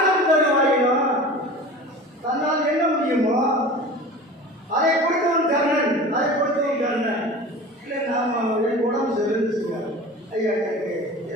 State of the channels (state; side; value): normal; both; correlation 0.37